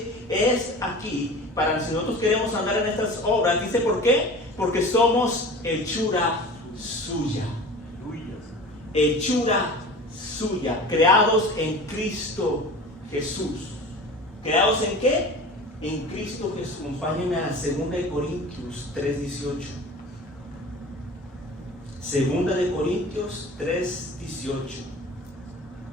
es aquí, para si nosotros queremos andar en estas obras, dice ¿por qué? Porque somos hechura suya. Hechura suya, creados en Cristo Jesús. ¿Creados en qué? En Cristo Jesús. Acompáñenme a 2 Corintios 3:18. 2 Corintios 3:18.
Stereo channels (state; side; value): normal; both; correlation 0.38